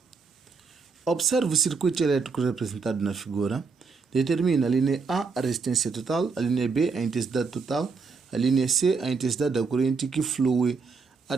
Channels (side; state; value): left; quieter; 4.8 dB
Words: Observe o circuito elétrico representado na figura. Determina a linha A a resistência total, a linha B a intensidade total, a linha C a intensidade da corrente que flui